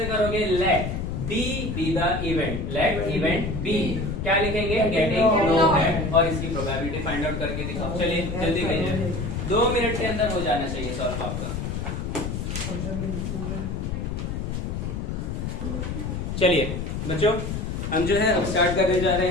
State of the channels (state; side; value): noise; left; rumble, 3 dB below the sound